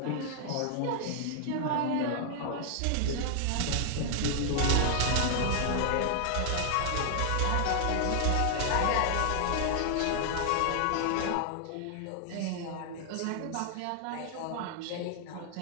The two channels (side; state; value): both; different; correlation 0.00